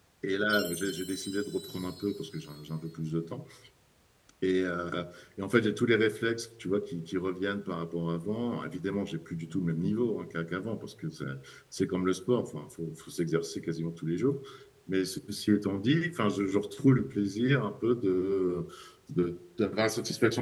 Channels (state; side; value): identical; both; correlation 1.00